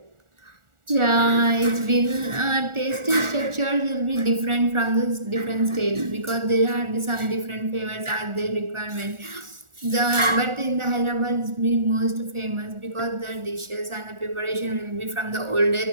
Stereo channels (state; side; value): late; left; 1.4 ms